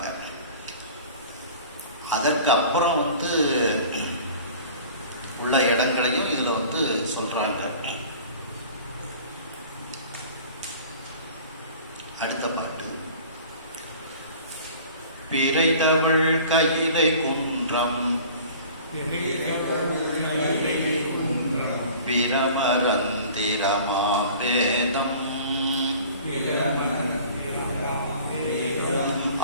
அதற்கு அப்புறம் உள்ள இடங்களையும் இதுல சொல்றாங்க. அடுத்த பாட்டு. பிறை தமிழ் கையிலை குன்றம் பிரமரந்திரமாம் வேதம்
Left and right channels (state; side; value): inverted; both; correlation -0.45